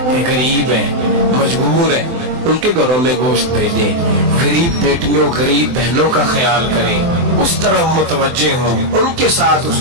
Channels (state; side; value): late; left; 24 ms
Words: کہ غریب ہیں, مجبور ہیں, ان کے گھروں میں گوشت بھیجیں. غریب بیٹیوں, غریب بہنوں کا خیال کریں, اس طرح متوجہ ہوں, ان کے ساتھ اس